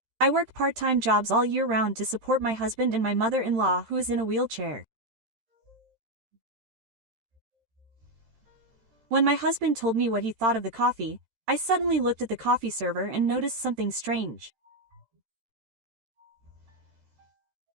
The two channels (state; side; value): late; left; 13 ms